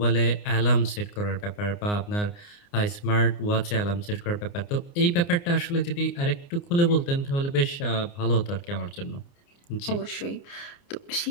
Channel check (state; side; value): late; right; 29 ms